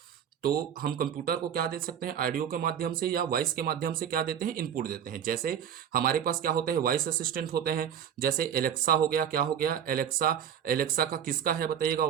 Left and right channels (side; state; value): left; quieter; 8.9 dB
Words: तो हम कंप्यूटर को क्या दे सकते हैं? ऑडियो के माध्यम से या वॉइस के माध्यम से क्या देते हैं? इनपुट देते हैं। जैसे हमारे पास क्या होते हैं? वॉइस असिस्टेंट होते हैं। जैसे एलेक्सा हो गया। क्या हो गया? एलेक्सा। एलेक्सा का किसका है बताइएगा